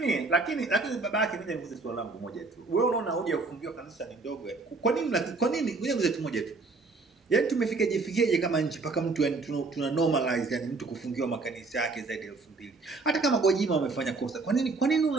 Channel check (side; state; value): left; quieter; 3.8 dB